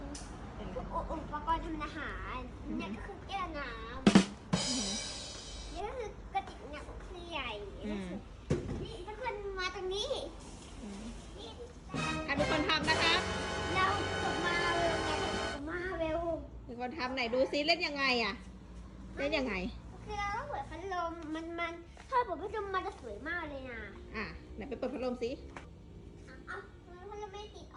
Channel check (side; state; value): both; identical; correlation 1.00